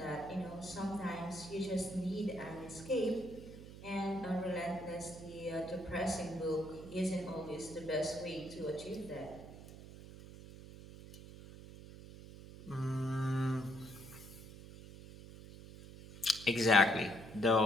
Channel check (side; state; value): right; noise; hum, 15 dB below the sound